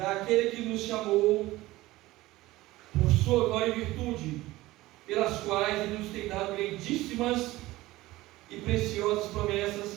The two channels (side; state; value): left; quieter; 18.1 dB